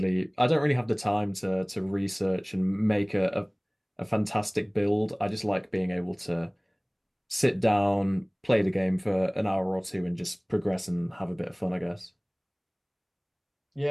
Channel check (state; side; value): identical; both; correlation 1.00